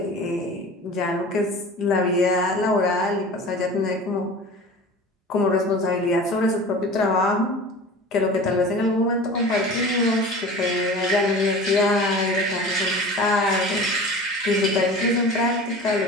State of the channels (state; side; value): normal; both; correlation 0.38